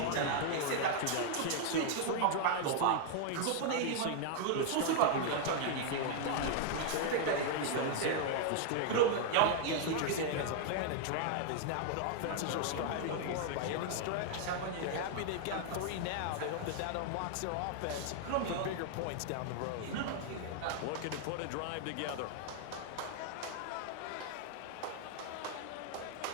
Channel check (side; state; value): both; different; correlation 0.00